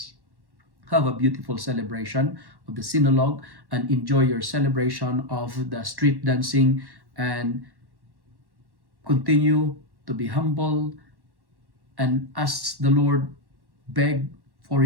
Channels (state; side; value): late; left; 1.1 ms